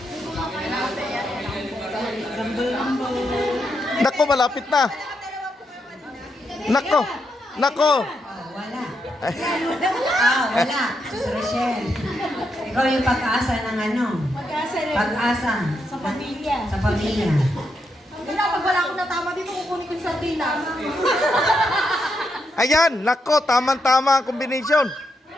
Nako, malapit na. Nako. Nako. Oh, wala. Wala. Sus Rochelle. Ikaw yung pag-asa ng ano? Pag-asa rin. Pag-asa. Sa pamilya. Sa pamilya. Wala, pag wala akong natama dito, kukunin ko yung sardinas. Ayan, nako, tamang-tama ang combination.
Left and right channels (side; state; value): both; normal; correlation 0.81